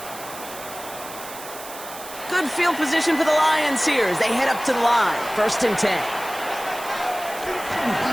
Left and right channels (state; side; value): noise; right; hiss, 13 dB below the sound